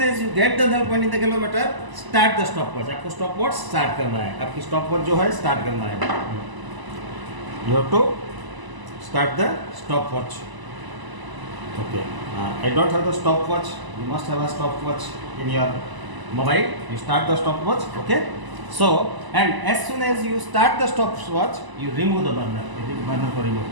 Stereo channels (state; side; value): late; left; 1.0 ms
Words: as you get the null point in the galvanometer, start the stopwatch. आपको stopwatch start करना है. आपकी stopwatch जो है start करना है. You have to start the stopwatch. Okay, I don't have the stopwatch. You must have a stopwatch in your mobile. You start the stopwatch. Okay. So, and as soon as you start the stopwatch, you remove the burner. It is burner for remove.